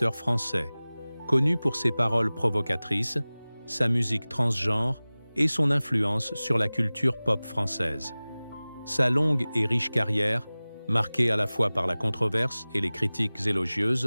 français, connu pour ses paroles provocatrices, sa musique transgenre et son influence sur la culture pop française. Sa longue et riche carrière, marquée à la fois par la controverse et les critiques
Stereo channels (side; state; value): both; inverted; correlation -0.99